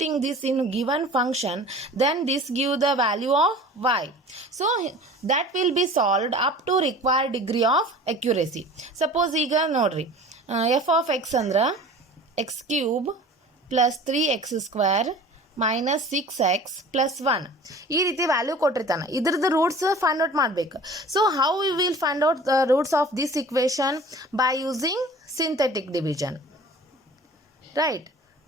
this in given function, then this give the value of y. So that will be solved up to required degree of accuracy. Suppose ಈಗ ನೋಡ್ರಿ f of x ಅಂದ್ರ x cube plus 3x square minus 6x plus 1 ಈ ರೀತಿ value ಕೊಟ್ಟಿರ್ತಾನೆ. ಇದ್ರದ್ದು roots find out ಮಾಡಬೇಕು. So how we will find out the roots of this equation? By using synthetic division, right?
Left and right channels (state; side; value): normal; both; correlation 0.43